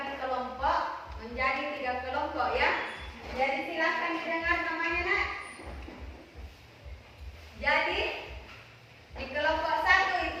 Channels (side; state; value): both; identical; correlation 1.00